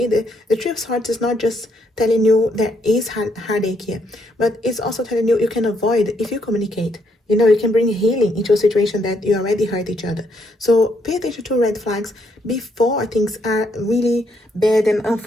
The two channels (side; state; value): both; normal; correlation 0.74